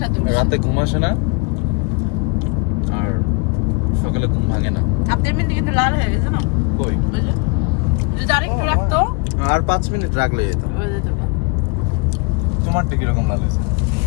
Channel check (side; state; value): right; quieter; 28.5 dB